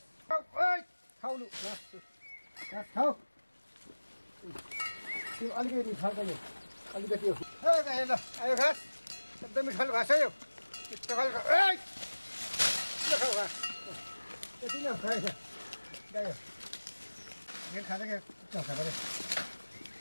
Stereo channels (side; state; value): both; inverted; correlation -1.00